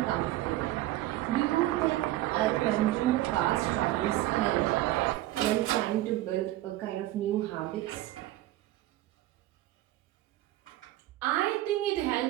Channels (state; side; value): quieter; left; 15.8 dB